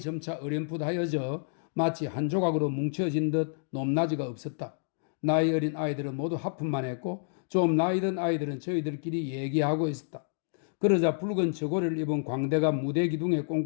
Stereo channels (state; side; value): silent; right; digital silence